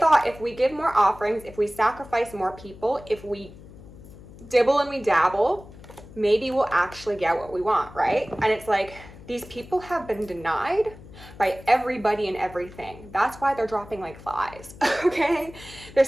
if we give more offerings, if we sacrifice more people, if we dibble and we dabble, maybe we'll actually get what we want, right? And it's like, these people have been denied by everybody and everything. That's why they're dropping like flies, okay? They're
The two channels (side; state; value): left; noise; hum, 18 dB below the sound